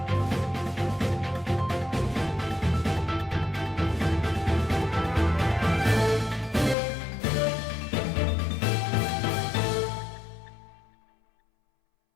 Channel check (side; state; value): right; drops out; at 6.8 s